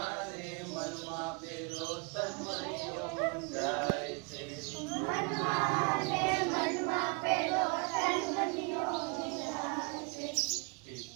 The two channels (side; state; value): left; quieter; 32.7 dB